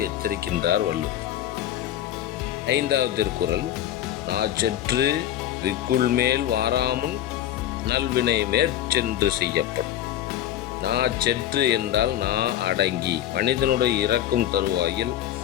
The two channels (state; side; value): quieter; right; 11.8 dB